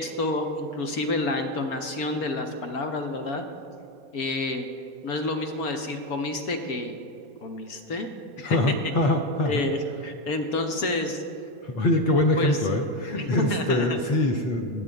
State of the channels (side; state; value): right; late; 4.4 ms